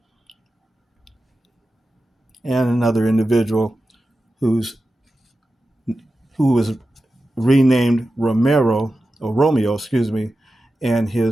And another individual who was renamed Romeo, and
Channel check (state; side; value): normal; both; correlation 0.93